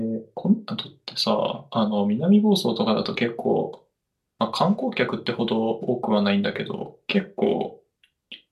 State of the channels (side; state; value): both; identical; correlation 1.00